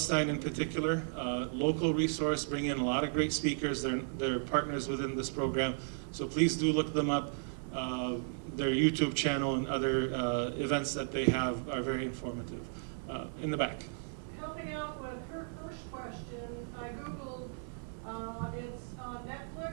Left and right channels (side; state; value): left; silent; 55 dB below the other